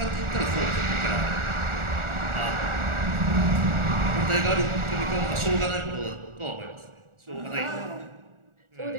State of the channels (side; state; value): left; late; 1.4 ms